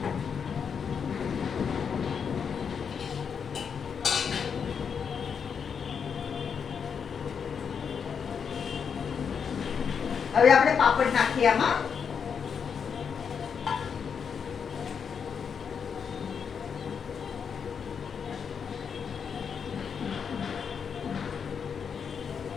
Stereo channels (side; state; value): right; quieter; 6.7 dB